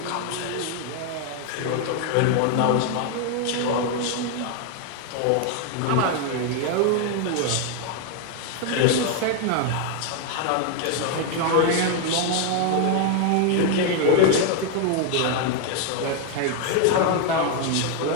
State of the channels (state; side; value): different; both; correlation 0.00